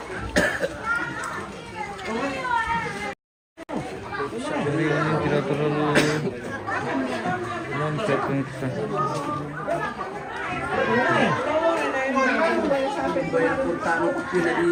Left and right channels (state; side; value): identical; both; correlation 1.00